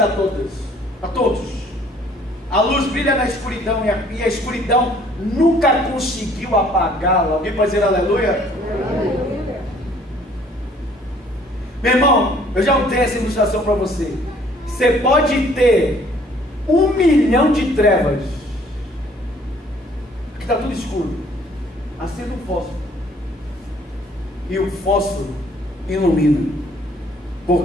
a todos. A todos. A luz brilha na escuridão, e a escuridão nunca conseguiu apagá-la. Alguém pode dizer aleluia? Aleluia. Meu irmão, eu já dei essa ilustração para você. Você pode ter 1 milhão de trevas. Aqui está tudo escuro. Acenda um fósforo. E o fósforo ilumina.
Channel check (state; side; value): normal; both; correlation 0.59